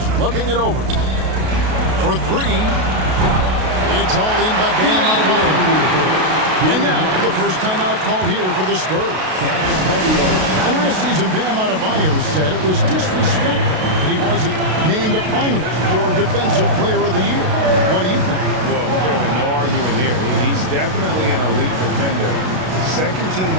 looking it over. For 3. It's all in by Bam Adebayo. And now, the first timeout call here for the Spurs. And last season, Bam Adebayo said it was disrespectful that he wasn't named a finalist for Defensive Player of the Year. What do you think? Well, Kevin, no arguing here. He's definitely an elite defender. Second team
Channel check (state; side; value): late; left; 32 ms